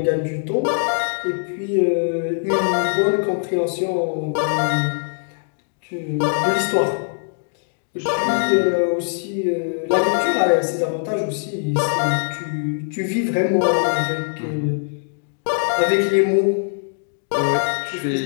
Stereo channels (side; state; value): right; silent; 65 dB below the other